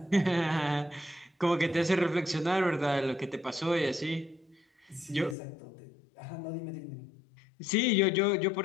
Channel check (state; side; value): drops out; right; at 5.4 s